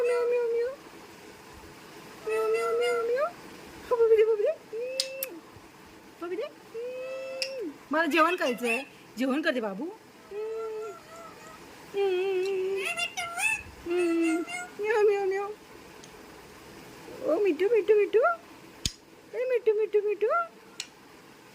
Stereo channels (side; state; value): both; identical; correlation 1.00